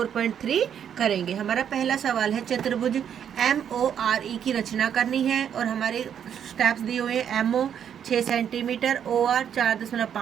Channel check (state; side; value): quieter; left; 8.7 dB